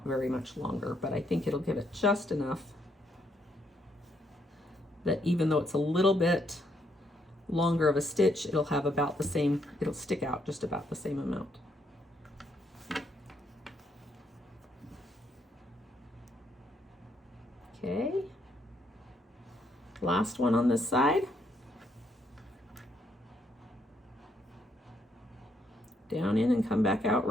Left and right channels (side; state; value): both; normal; correlation 0.74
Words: very much longer, but I think it'll give it just enough that even though it's a little bit longer of a stitch, it'll have about the same, it'll stick out just about the same amount. Okay, last one on this side. Down in and come back out